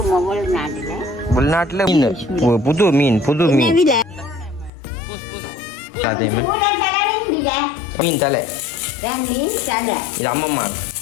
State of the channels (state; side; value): drops out; right; at 4.7 s